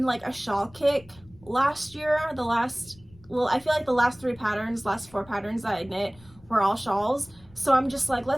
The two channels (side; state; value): left; noise; rumble, 25 dB below the sound